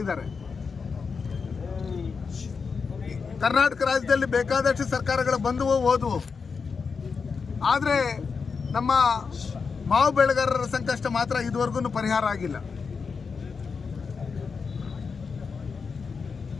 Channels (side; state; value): right; quieter; 5.3 dB